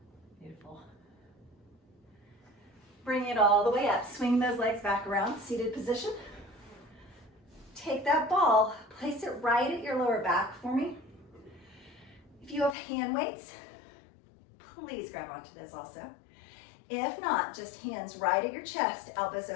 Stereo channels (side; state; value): right; drops out; at 12.8 s